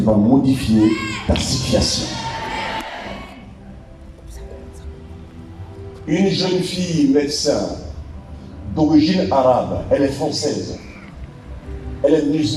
va modifier ta situation. Une jeune fille médecin d'origine arabe, elle est française. Elle est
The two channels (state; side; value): identical; both; correlation 1.00